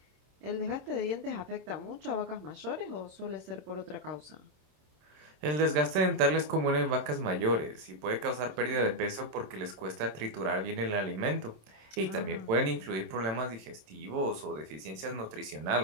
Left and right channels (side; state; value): left; late; 27 ms